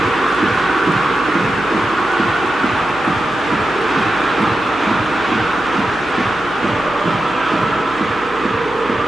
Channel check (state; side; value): noise; right; hum, 21 dB below the sound